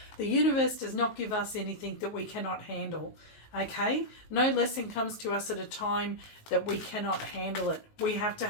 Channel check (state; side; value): late; right; 19 ms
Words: The universe does not give us anything that we cannot handle. Okay, no lesson comes to us at a time that we cannot handle it. We have to